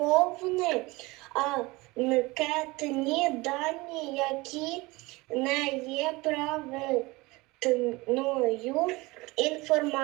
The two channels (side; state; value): left; quieter; 22.9 dB